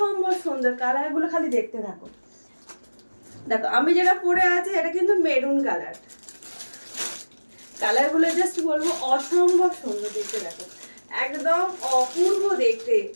সুন্দর, কালারগুলো খালি দেখতে থাকো। দেখো আমি যেটা পরে আছি এটা কিন্তু মেরুন কালার, কালারগুলো জাস্ট বলবো অসম্ভব সুন্দর দেখতে। দেখো একদম অপূর্ব দেখতে।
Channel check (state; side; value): inverted; both; correlation -1.00